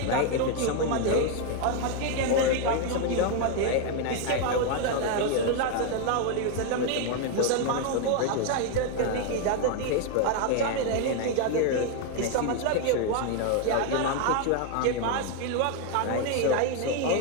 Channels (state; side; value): different; both; correlation 0.01